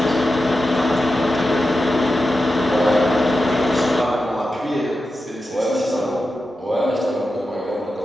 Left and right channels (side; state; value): both; normal; correlation 0.91